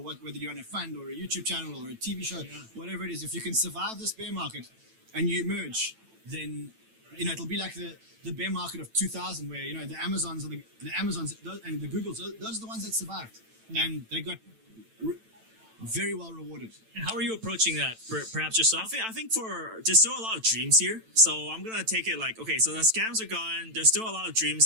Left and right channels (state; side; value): late; left; 9.0 ms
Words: you're on a fund or a YouTube channel or a TV show, whatever it is, if you can survive this bear market and you emerge, then it'll be like the bear market of 2000, where the Amazons and the Googles, those are the ones that survived, and they got very well rewarded. And how are you approaching that? Perhaps yourself? I think there's still a lot of dreams here. So I'm gonna take it like, okay, so the scams are gone. There's still a lot of